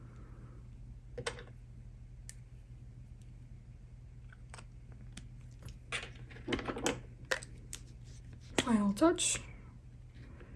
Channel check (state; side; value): identical; both; correlation 1.00